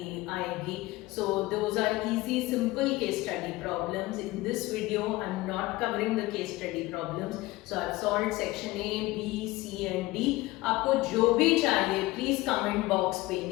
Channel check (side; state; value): right; quieter; 19.5 dB